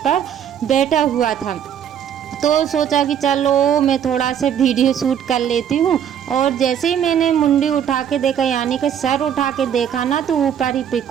बैठा हुआ था। तो सोचा कि चलो मैं थोड़ा सा वीडियो शूट कर लेती हूँ। और जैसे ही मैंने मुंडी उठा के देखा, यानी कि सर उठा के देखा ना, तो ऊपर ही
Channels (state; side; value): quieter; left; 9.1 dB